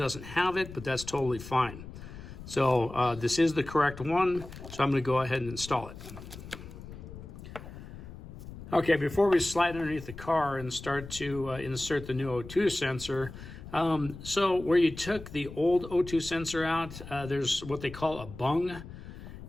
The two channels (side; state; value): left; noise; rumble, 13 dB below the sound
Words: have it, but that's totally fine. So this is the correct one. So I'm going to go ahead and install it. Okay, before we slide underneath the car and start to insert the new O2 sensor, so where you took the old O2 sensor out, there's what they call a bung.